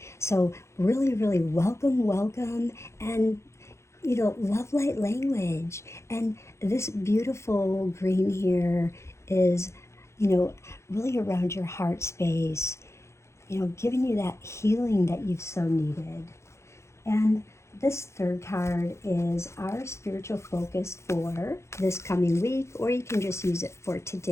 So really, really welcome, and love light language. And this beautiful green here is, really around your heart space, giving you that healing that you've so needed. And this third card is our spiritual focus for this coming week, or you can just use it for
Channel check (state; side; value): late; right; 0.13 ms